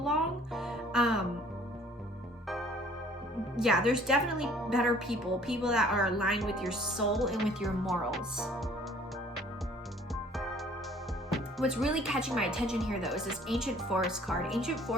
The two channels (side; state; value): both; normal; correlation 0.55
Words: Yeah, there's definitely better people that are aligned with your soul and with your morals. What's really catching my attention here, though, is this ancient forest card. Ancient